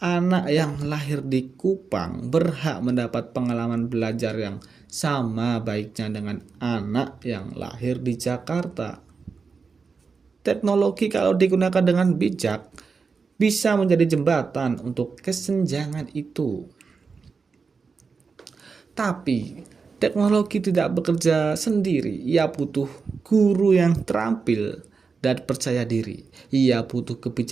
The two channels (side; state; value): left; quieter; 5.0 dB